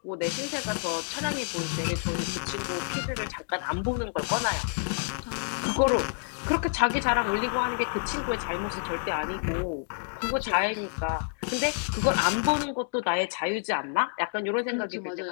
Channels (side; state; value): right; silent; digital silence